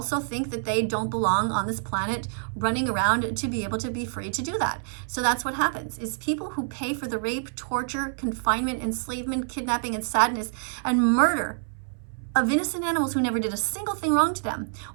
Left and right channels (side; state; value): left; silent; 60 dB below the other